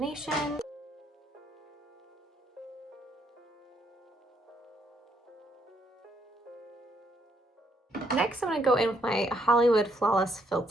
Next, I'm going to go in with my Hollywood Flawless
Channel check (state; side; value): normal; both; correlation 0.73